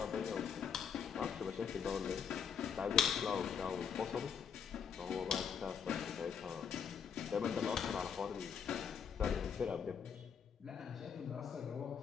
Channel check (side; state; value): right; quieter; 7.2 dB